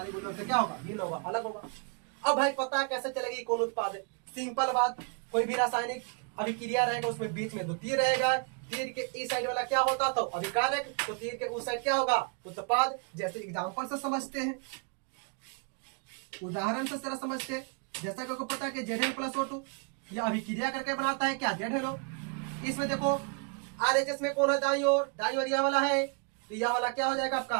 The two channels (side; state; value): left; quieter; 38.1 dB